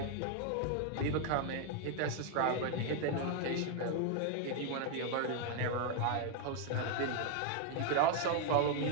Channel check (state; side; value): different; both; correlation 0.00